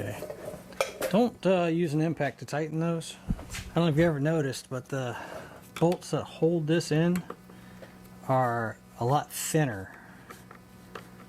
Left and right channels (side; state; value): both; identical; correlation 1.00